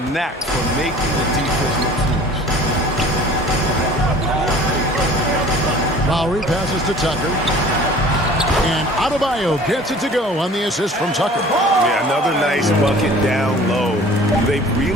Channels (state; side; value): normal; both; correlation 0.47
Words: knack for making the defense look foolish. Lowry passes to Tucker. And Adebayo gets it to go on the assist from Tucker. Yeah, another nice bucket down low. They've